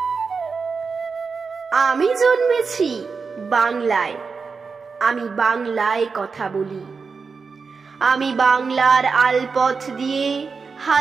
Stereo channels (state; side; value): quieter; left; 5.0 dB